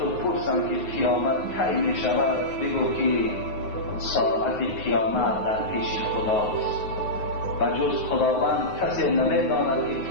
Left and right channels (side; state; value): right; late; 9.5 ms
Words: پرسم که قیامت کی می شود بگو که ساعت قیامت در پیش خداست و جز خداوند کسی نمی‌داند که